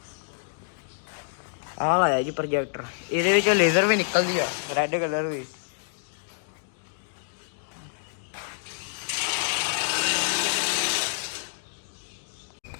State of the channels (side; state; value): right; silent; digital silence